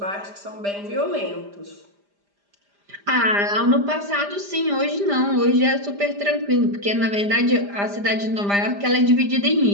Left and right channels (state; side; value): late; left; 5.0 ms